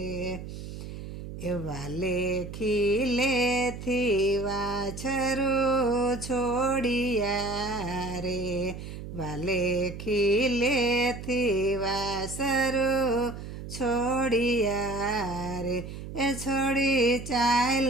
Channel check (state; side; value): noise; right; hum, 10 dB below the sound